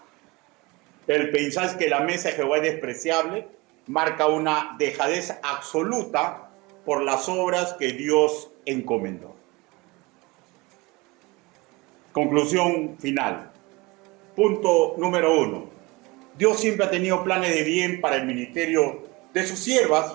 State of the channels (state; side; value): quieter; left; 24.0 dB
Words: El pensar que la mesa de Jehová es despreciable marca una dejadez absoluta por las obras que Dios encomendó. Conclusión final. Punto número 1. Dios siempre ha tenido planes de bien para el ministerio de sus